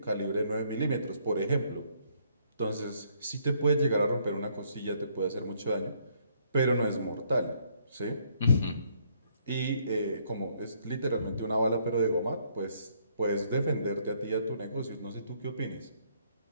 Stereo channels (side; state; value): both; inverted; correlation -0.68